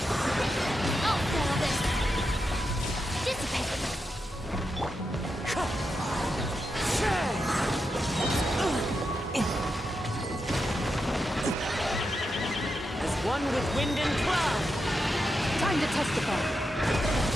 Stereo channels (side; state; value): both; normal; correlation 0.87